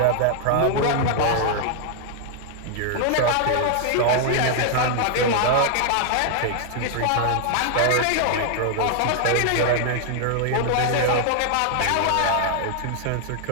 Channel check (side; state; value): both; different; correlation 0.00